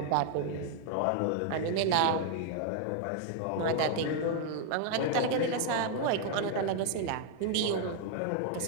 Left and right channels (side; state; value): both; different; correlation 0.00